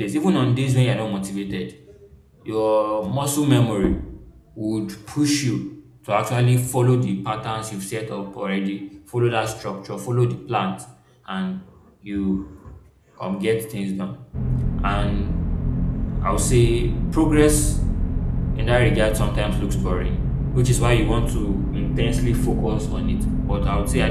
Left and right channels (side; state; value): both; identical; correlation 1.00